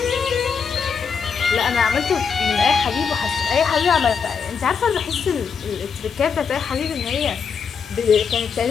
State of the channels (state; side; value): quieter; right; 6.1 dB